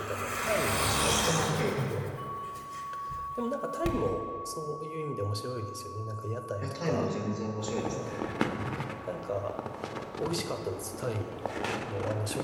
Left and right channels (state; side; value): identical; both; correlation 1.00